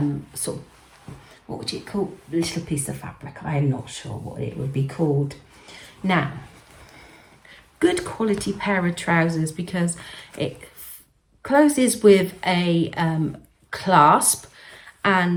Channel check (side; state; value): both; identical; correlation 1.00